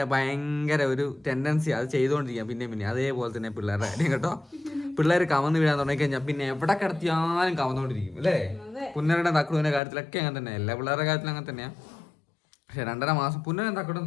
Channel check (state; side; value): drops out; right; at 9.8 s